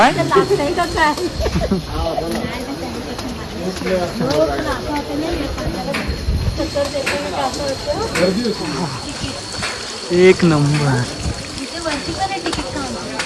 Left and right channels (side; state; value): both; identical; correlation 1.00